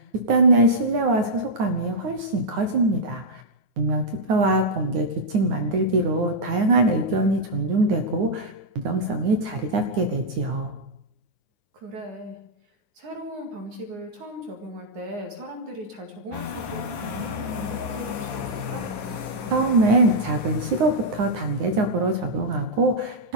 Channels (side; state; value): left; late; 9.6 ms